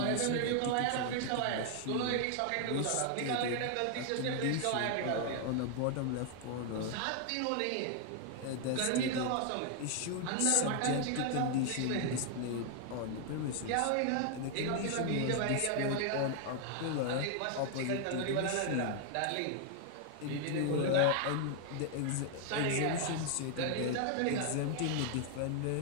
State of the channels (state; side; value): different; both; correlation 0.00